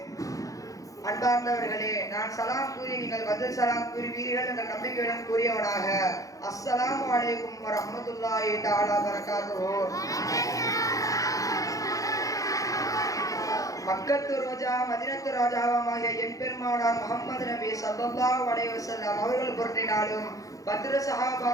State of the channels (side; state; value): right; late; 0.17 ms